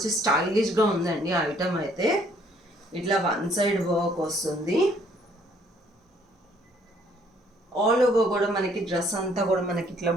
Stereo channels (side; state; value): both; normal; correlation 0.63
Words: స్టైలిష్గా ఉందండి ఐటమ్ అయితే. ఇట్లా వన్ సైడ్ వర్క్ వస్తుంది. ఆల్ ఓవర్ కూడా మనకి డ్రెస్ అంతా కూడా మనకి ఇట్లా